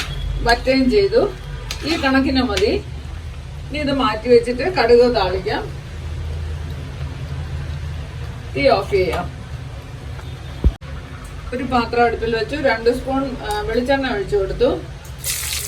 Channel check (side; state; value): both; identical; correlation 1.00